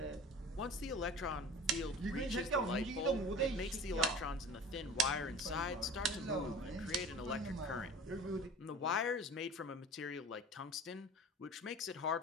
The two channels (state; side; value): normal; both; correlation 0.39